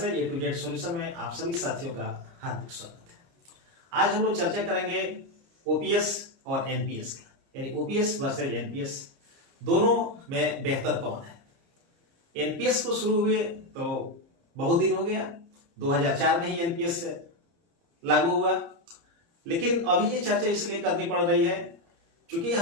है A to Z solution में आप सभी साथियों का हार्दिक स्वागत है। आज हम लोग चर्चा करेंगे ओपीएस और एनपीएस की, यानी ओपीएस वर्सेस एनपीएस दोनों में बेहतर कौन है। एनपीएस को शुरू हुए तो बहुत दिन हो गया, 2004 में ही एनपीएस लागू हुआ, लेकिन अभी ये चर्चा इसलिए करनी पड़ रही है क्योंकि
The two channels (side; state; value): left; late; 30 ms